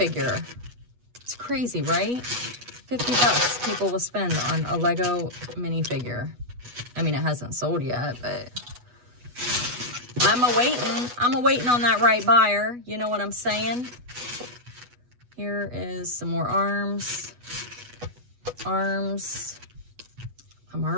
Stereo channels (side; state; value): left; late; 8.2 ms